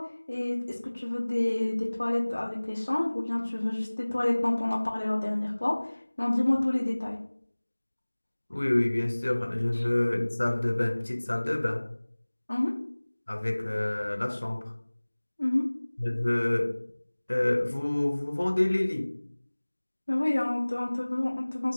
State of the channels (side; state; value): both; inverted; correlation -1.00